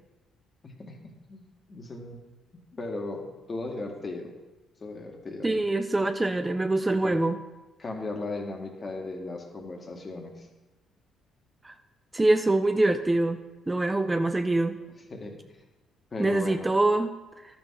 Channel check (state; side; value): normal; both; correlation 0.95